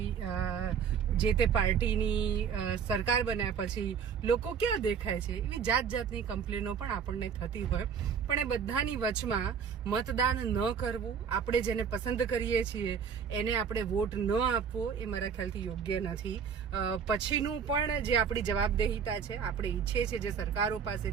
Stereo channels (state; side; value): quieter; left; 6.9 dB